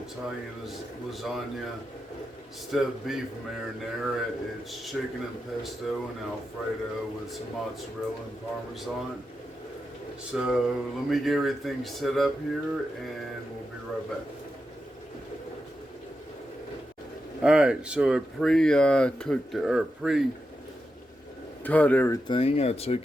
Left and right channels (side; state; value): both; normal; correlation 0.88